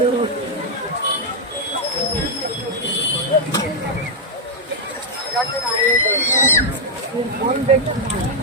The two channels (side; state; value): both; normal; correlation -0.03